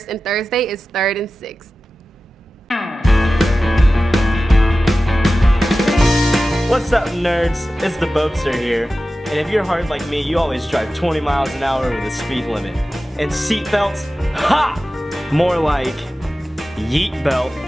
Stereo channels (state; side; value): normal; both; correlation 0.95